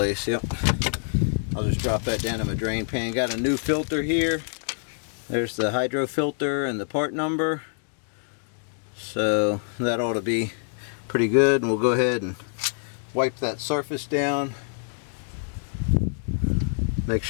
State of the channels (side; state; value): right; silent; digital silence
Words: Yep. I'll just drop that down in my drain pan. Got a new filter here. There's the hydro filter and the part number. So that ought to be pretty good. And we'll go ahead and wipe that surface down. Make